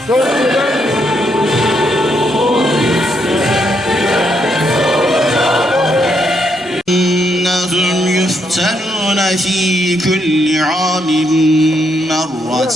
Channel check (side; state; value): both; normal; correlation 0.77